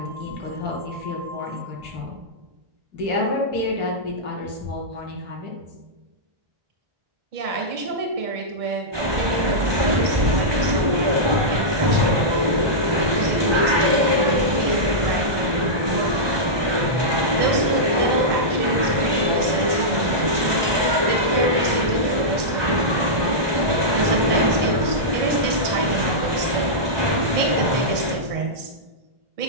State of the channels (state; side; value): late; left; 1.2 ms